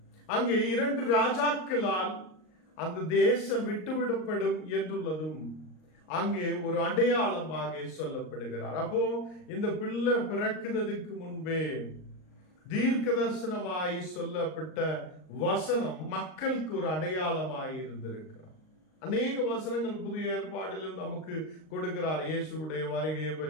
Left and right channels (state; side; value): late; right; 38 ms